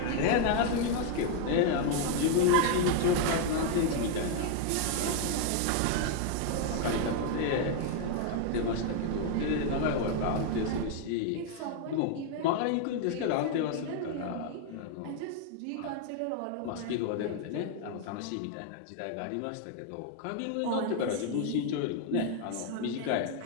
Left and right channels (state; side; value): different; both; correlation 0.00